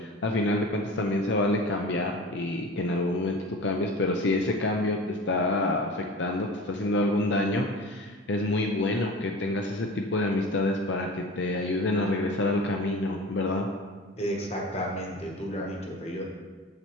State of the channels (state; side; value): normal; both; correlation 0.36